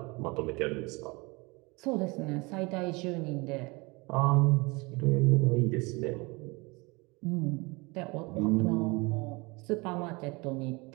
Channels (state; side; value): quieter; left; 26.1 dB